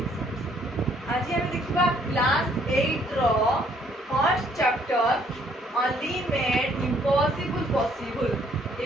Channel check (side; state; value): both; normal; correlation 0.65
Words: आज हम देखिबा class 8 रो first chapter only made impossible possible.